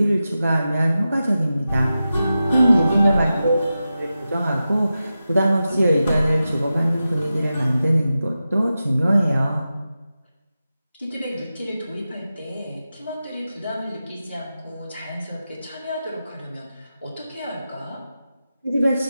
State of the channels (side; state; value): both; inverted; correlation -0.92